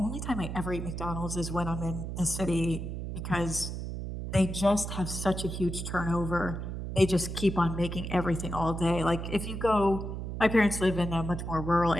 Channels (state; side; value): noise; right; hum, 5 dB below the sound